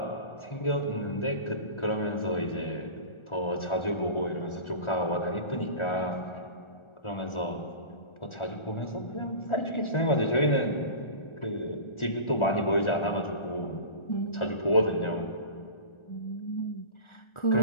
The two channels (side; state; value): right; late; 1.4 ms